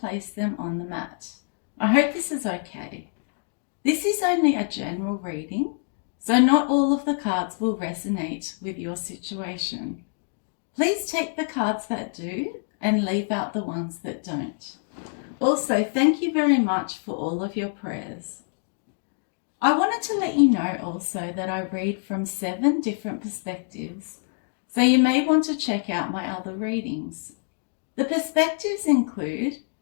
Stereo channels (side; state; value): right; silent; 61 dB below the other